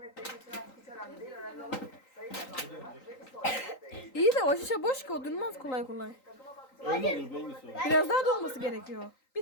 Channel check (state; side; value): late; right; 3.9 ms